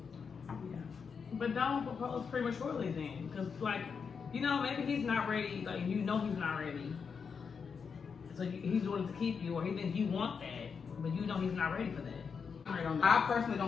But don't propose prematurely then. Because, like, you know, maybe he's not ready. Like, you know he's not ready. So he's doing it to keep you, or he thinks you want that, but you know he's not ready for that. I personally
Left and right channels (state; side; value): quieter; right; 6.0 dB